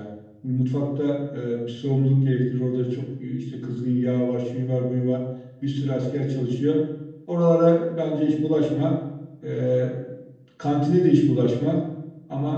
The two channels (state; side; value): identical; both; correlation 1.00